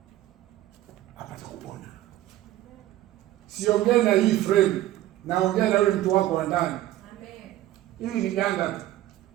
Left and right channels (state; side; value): quieter; left; 14.4 dB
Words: apate kupona. Siongee na hii frame, naongea na yule mtu wako wa ndani. Amen. Ili ni ganda